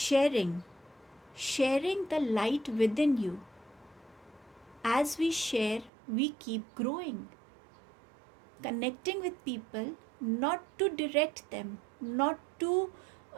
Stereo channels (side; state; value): left; drops out; at 5.9 s